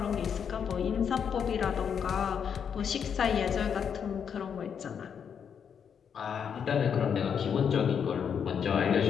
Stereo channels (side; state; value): right; quieter; 7.4 dB